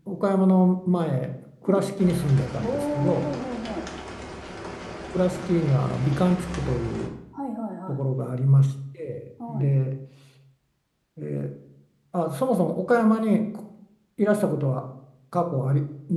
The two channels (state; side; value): identical; both; correlation 1.00